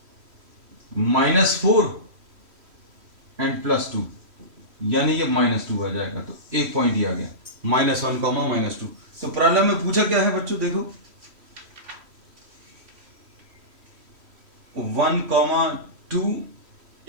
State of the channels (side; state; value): left; late; 3.1 ms